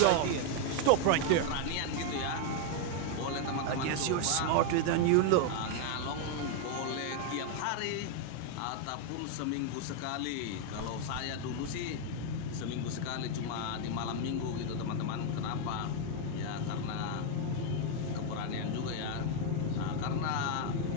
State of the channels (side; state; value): both; different; correlation 0.01